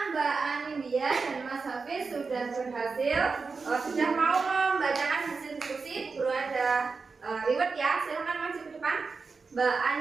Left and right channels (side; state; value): left; quieter; 4.6 dB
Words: Mbak Anilia dan Mas Hafiz sudah berhasil, sudah mau membacakan hasil diskusi, Guru ada reward ya, silahkan maju ke depan Mbak